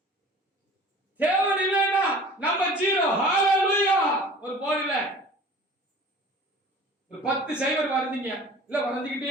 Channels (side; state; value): both; normal; correlation 0.44